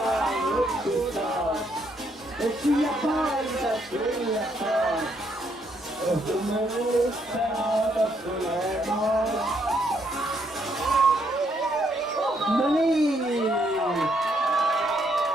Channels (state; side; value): normal; both; correlation 0.73